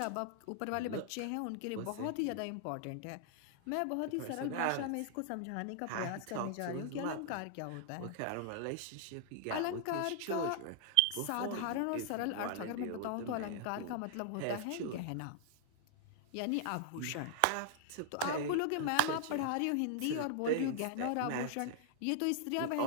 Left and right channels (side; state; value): both; different; correlation 0.00